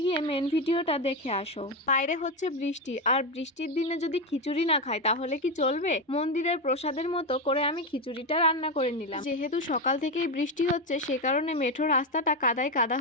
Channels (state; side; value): normal; both; correlation 0.11